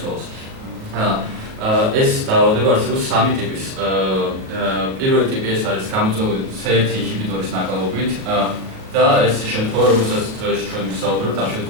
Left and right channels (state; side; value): late; left; 37 ms